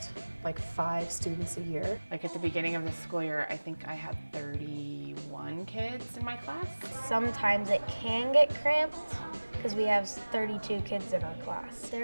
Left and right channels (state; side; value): inverted; both; correlation -1.00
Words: like 5 students a year. Like at the beginning of the school year, I think I had 31 kids in my class. Sometimes it can get cramped because we have 32 kids in our class.